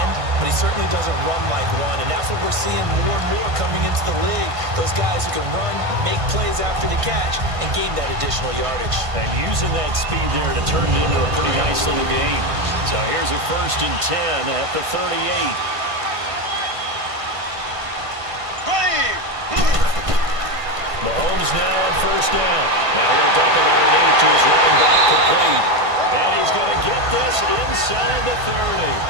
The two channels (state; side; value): late; left; 1.5 ms